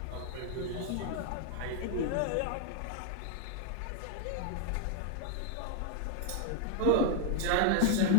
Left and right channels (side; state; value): both; different; correlation 0.00